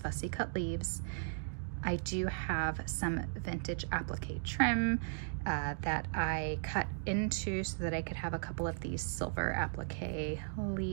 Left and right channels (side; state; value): left; silent; digital silence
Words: cut leaves. I do have some vintage applique trim that I cut into so that I could have a couple of these silver applique